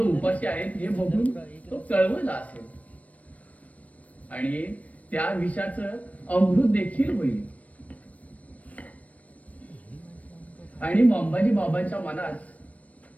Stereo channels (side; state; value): right; late; 0.068 ms